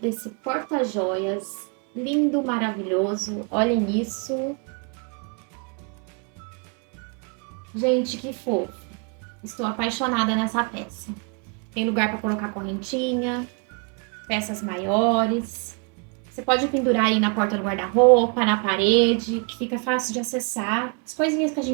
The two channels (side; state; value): left; quieter; 35.4 dB